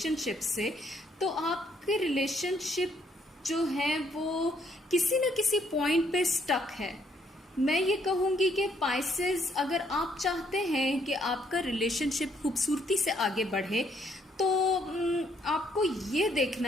से। तो आपके रिलेशनशिप जो है वो किसी न किसी पॉइंट पे स्टक है। मैं ये कहूँगी कि पाइसेस, अगर आप चाहते हैं कि आपका रिलेशनशिप खूबसूरती से आगे बढ़े तो आपको ये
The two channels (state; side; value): normal; both; correlation 0.69